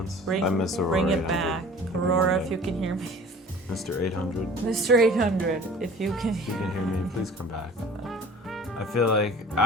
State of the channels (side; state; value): both; normal; correlation 0.45